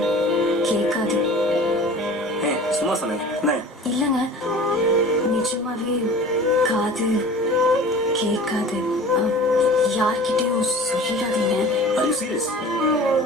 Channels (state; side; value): normal; both; correlation 0.42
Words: கேட்காது. சும்மா சொன்னேன். இல்லைங்க, நிஜமாவே காது கேட்காது. யார்கிட்டயும் சொல்லிடாதீங்க.